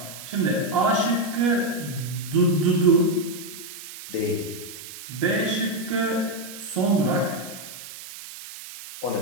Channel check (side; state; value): right; noise; hiss, 13 dB below the sound